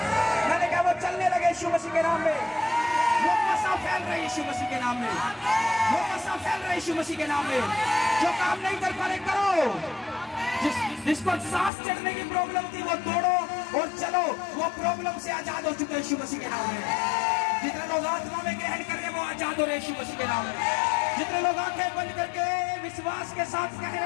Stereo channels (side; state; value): right; drops out; at 11.7 s